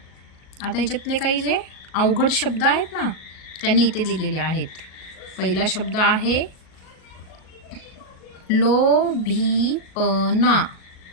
ह्याच्यातले काही जे अवघड शब्द आहेत ना, त्यांनी इथे दिलेले आहेत. पहिला शब्द आहे लोभीपणा.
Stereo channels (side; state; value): right; late; 38 ms